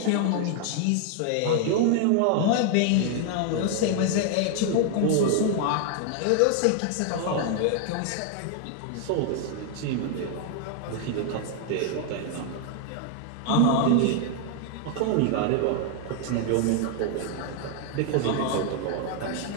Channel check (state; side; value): different; both; correlation 0.00